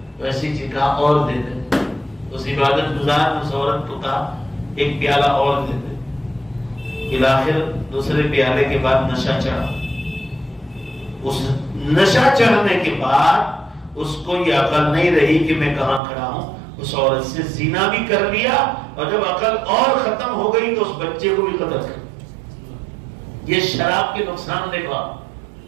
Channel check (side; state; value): left; drops out; at 16.0 s